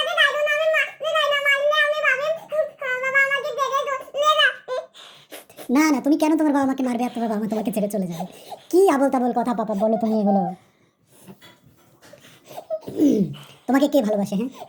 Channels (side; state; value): both; identical; correlation 1.00